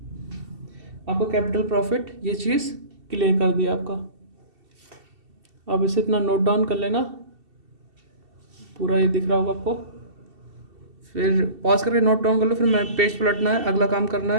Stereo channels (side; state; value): left; late; 2.7 ms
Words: आपको कैपिटल प्रॉफिट ये चीज़ क्लियर कर दिया आपका। अब इसे इतना नोट डाउन कर लेना, पूरा ये दिख रहा होगा आपको, फिर पॉज करके नोट डाउन कर लो, फिर मैं पेज पलटना है, अगला काम करना